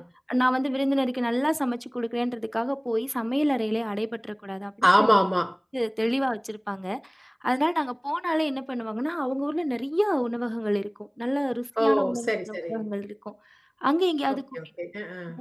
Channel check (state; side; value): identical; both; correlation 1.00